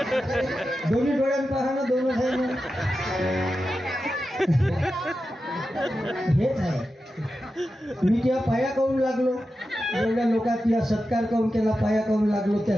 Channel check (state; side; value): normal; both; correlation 0.91